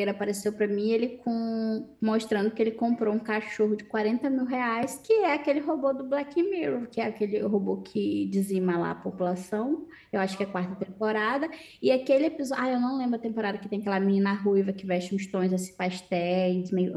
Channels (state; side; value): identical; both; correlation 1.00